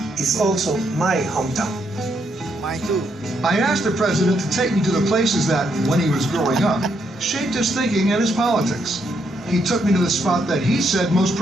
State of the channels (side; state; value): both; normal; correlation 0.76